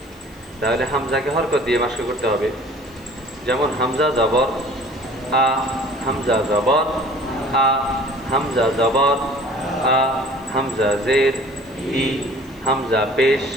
তাহলে হামজাকে হরকত দিয়ে মাস্ক করতে হবে। যেমন হামজা জবর আ, হামজা জবর আ, হামজা জবর আ, হামজা জের ই, হামজা পেশ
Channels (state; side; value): noise; left; hiss, 29 dB below the sound